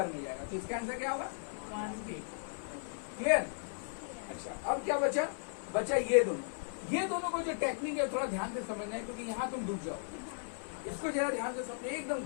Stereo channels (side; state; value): right; silent; digital silence